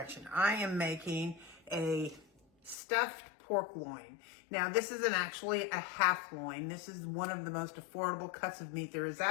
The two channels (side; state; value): right; drops out; at 2.8 s